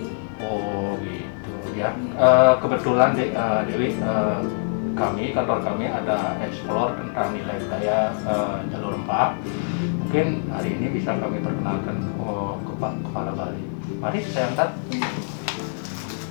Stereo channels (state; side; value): silent; right; digital silence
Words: Oh, gitu ya. Kebetulan, Dewi, kantor kami ada explore tentang nilai budaya Jalur Rempah. Mungkin hari ini bisa kami perkenalkan ke Pak Kepala Bali. Mari saya antar.